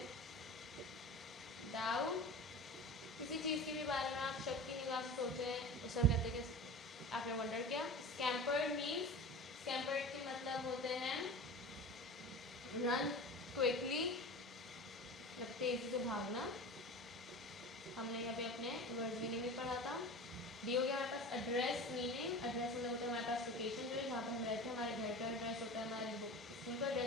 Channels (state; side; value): normal; both; correlation 0.34